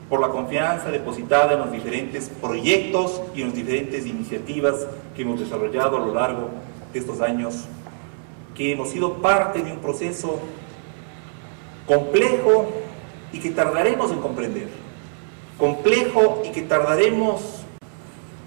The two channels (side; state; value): left; silent; digital silence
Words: por la confianza depositada en los diferentes proyectos y en las diferentes iniciativas que hemos desarrollado a lo largo de estos años, que hemos sido parte de un proceso complejo y que tardaremos en comprender, complejo y que tardaremos